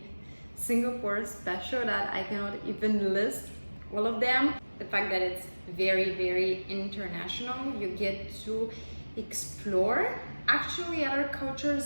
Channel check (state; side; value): inverted; both; correlation -1.00